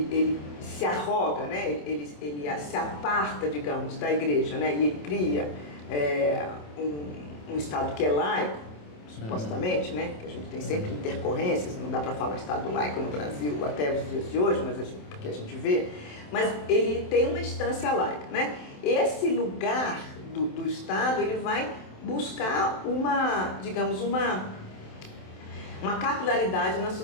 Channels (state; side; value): late; right; 27 ms